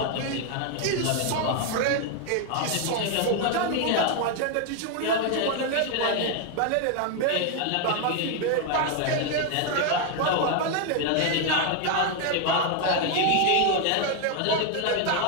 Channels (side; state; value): both; different; correlation 0.01